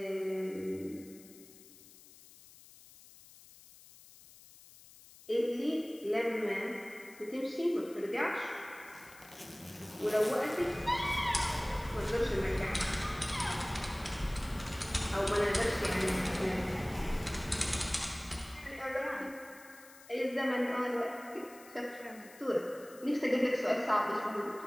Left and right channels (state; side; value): noise; left; hiss, 21 dB below the sound